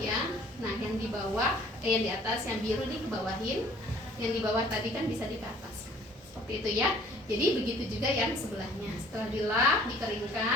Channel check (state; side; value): normal; both; correlation 0.55